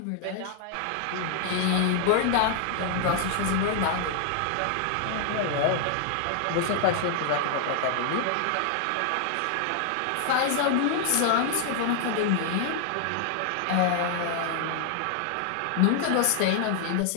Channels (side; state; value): both; different; correlation 0.00